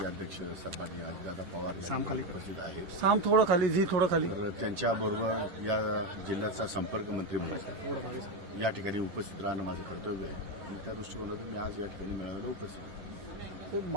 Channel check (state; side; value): late; left; 10 ms